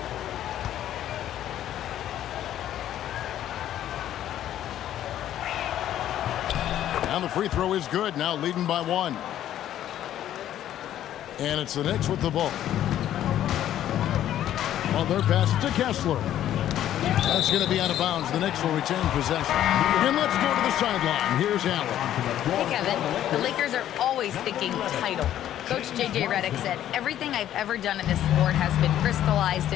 And the free throw is good, now leading by 1. And it's the Knicks with the ball. Butler passes to Kessler. That's going to be out of bounds. The Knicks will retain possession. And let's go to the sideline. Here's Allen. Hey, Kevin. The Lakers are always thinking title. Coach J.J. Redick said, everything I've ever done in this sport has been crystallized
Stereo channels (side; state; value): right; quieter; 11.8 dB